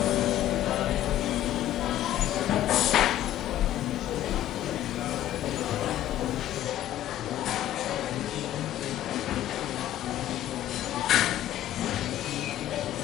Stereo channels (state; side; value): quieter; right; 12.8 dB